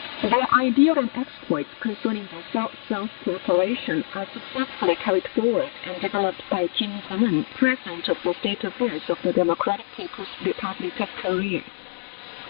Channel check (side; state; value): right; silent; digital silence